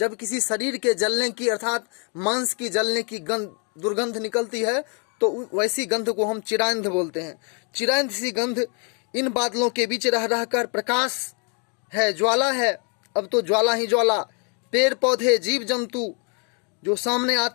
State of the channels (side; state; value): right; quieter; 37.7 dB